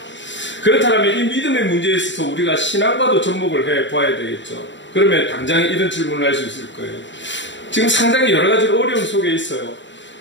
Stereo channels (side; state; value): right; late; 0.53 ms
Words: 그렇다면 이 믿음의 문제에 있어서 우리가 신앙과도 접목을 해 보아야 되겠죠. 그러면 당장 이런 질문을 할 수 있을 거예요. 지금 상당히 여러 가지 어려움 속에 있어요.